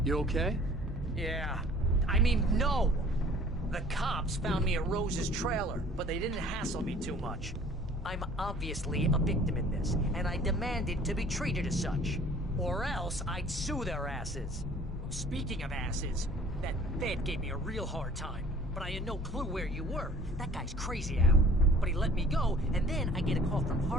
You okay? Yeah. I mean, no! The cops found me at Rose's trailer, but they didn't hassle me too much. I'm obviously a victim in this, and I demanded to be treated as such. Or else I'd sue their asses. Speaking of asses, that Fed gave me a real hard time, but I had no clue where you were. That guy's crazy, Al. But he let me go, and then I get a call from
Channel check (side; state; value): both; normal; correlation 0.51